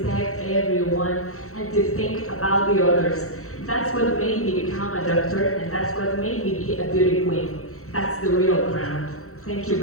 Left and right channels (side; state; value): right; late; 0.64 ms